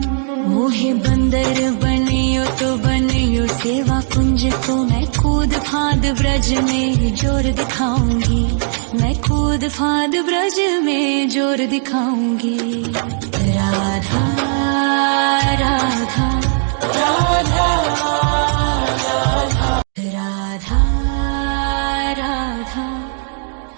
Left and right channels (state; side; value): silent; left; digital silence